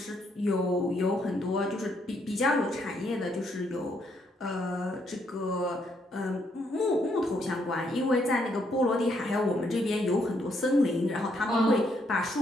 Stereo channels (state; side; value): normal; both; correlation 0.74